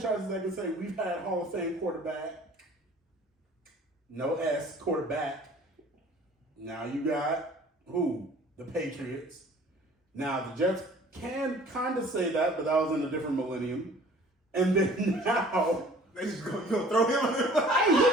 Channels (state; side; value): normal; both; correlation 0.50